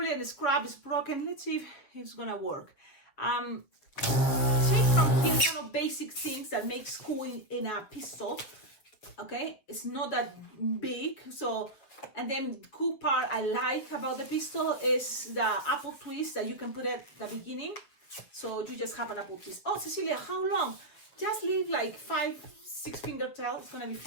a scrap is broken. Let's see if it's gonna work. From here, kind of basic things that make school in a pistol. Okay, it's not that big. So, and then the cool part I like about the pistol is the apple twist that you can put at the beginning. So you just have an apple twist. Oh, Cecilia, how long? Just leave like 5-6 finger tail. It's gonna be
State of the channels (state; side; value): late; right; 7.4 ms